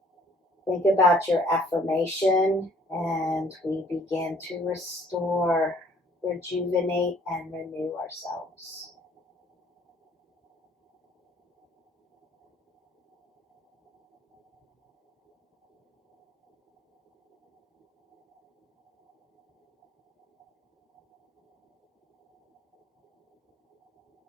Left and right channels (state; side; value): normal; both; correlation 0.58